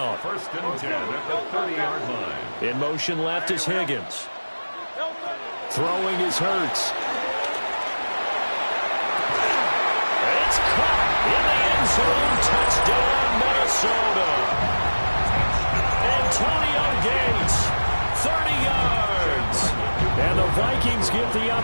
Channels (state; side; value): inverted; both; correlation -1.00